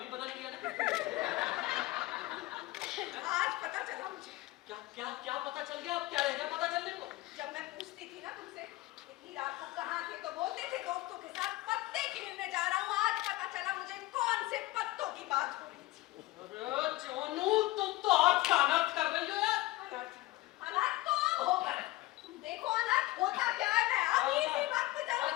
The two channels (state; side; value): quieter; right; 18.3 dB